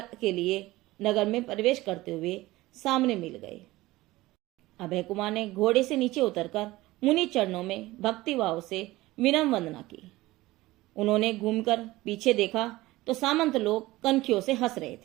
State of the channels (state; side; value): quieter; left; 18.6 dB